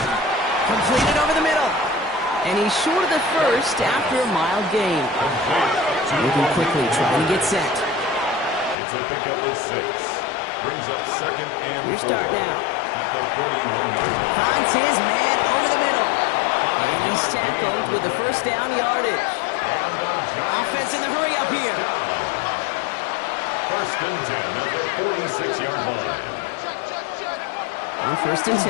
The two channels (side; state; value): right; drops out; at 8.8 s